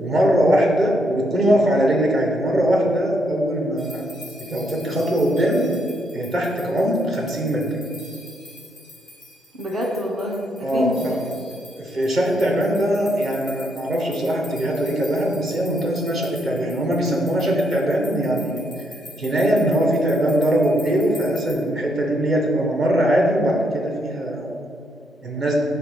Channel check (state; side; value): normal; both; correlation 0.75